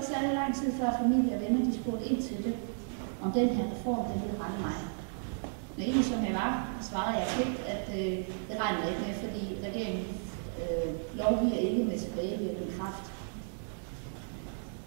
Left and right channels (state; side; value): silent; left; digital silence